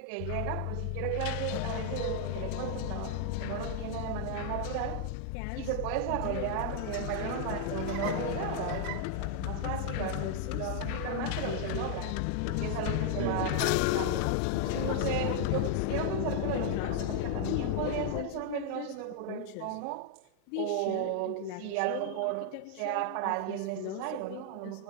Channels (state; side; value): different; both; correlation 0.00